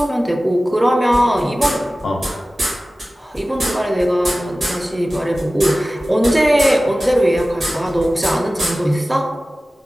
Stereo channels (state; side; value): normal; both; correlation 0.96